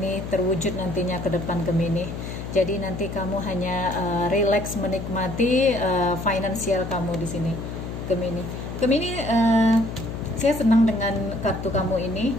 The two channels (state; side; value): noise; left; hum, 7 dB below the sound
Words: terwujud nantinya ke depan Gemini. Jadi nanti kamu hanya relax menikmati finansial kamu di sini Gemini. Gemini, saya senang dengan kartu kamu ini.